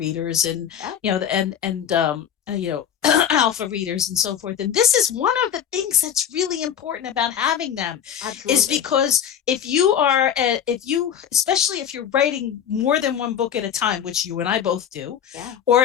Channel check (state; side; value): quieter; right; 8.9 dB